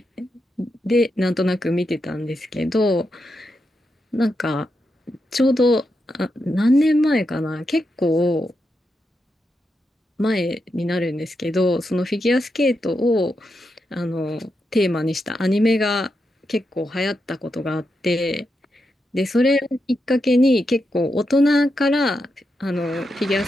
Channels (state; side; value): normal; both; correlation 0.85